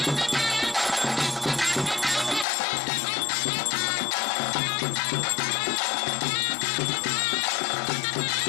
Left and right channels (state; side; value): drops out; right; at 2.5 s